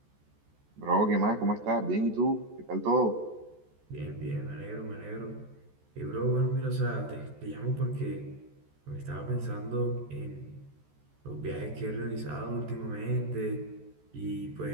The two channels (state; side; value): late; left; 14 ms